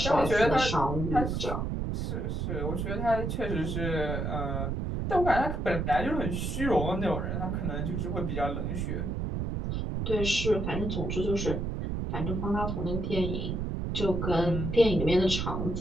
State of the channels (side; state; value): right; noise; rumble, 2 dB below the sound